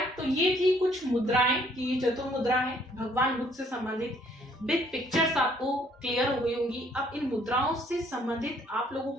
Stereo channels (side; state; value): both; normal; correlation 0.63